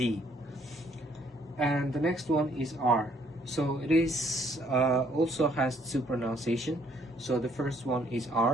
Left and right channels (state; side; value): normal; both; correlation 0.66